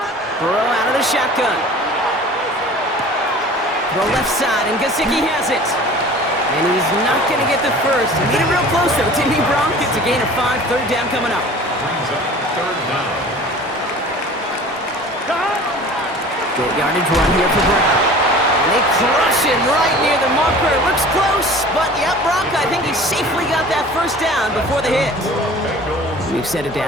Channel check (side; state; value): both; normal; correlation 0.43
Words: Burrow out of the shotgun. Throw left side, and Gesicki has it. And he's not going to get the first. He made it real close, though, didn't he, Brock? It's a gain of 5. Third down coming up. Brings up third down. Good yardage run here for Brown. And they crush him right near the marker. Looks close, but yeah, Brock, I think he safely got that first down before the hit. New set of